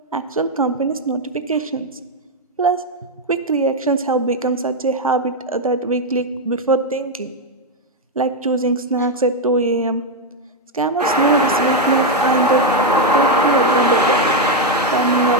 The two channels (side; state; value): both; normal; correlation 0.02